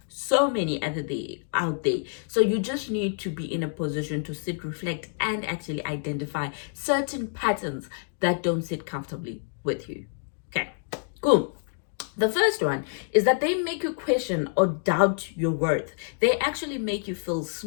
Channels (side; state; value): right; silent; 60 dB below the other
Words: so many other out there. So you just need to be in a position to sit, reflect, and actually identify certain patterns that don't sit comfortably with you. Okay, cool. The first one is that they make you question or doubt your worth. They actually make you feel